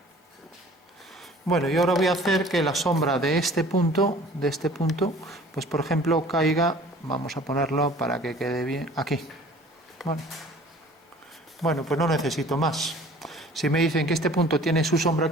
Bueno, y ahora voy a hacer que la sombra de este punto, pues por ejemplo caiga, vamos a ponerlo para que quede bien, aquí. Bueno, pues no necesito más. Si me dicen que este punto tiene su sombra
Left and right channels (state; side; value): normal; both; correlation 0.49